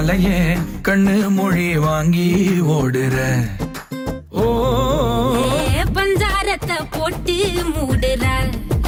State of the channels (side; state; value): both; identical; correlation 1.00